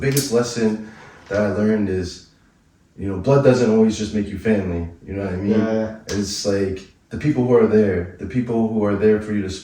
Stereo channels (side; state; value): both; identical; correlation 1.00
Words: lesson that I learned is, you know, blood doesn't always just make you family, you know what I mean? Yeah. It's like the people who are there for you to